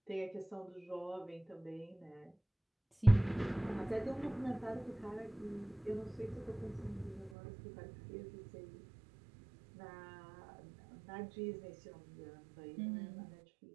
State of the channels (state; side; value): drops out; left; at 7.3 s